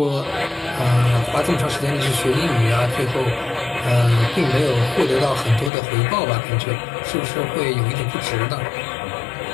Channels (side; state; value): right; drops out; at 5.7 s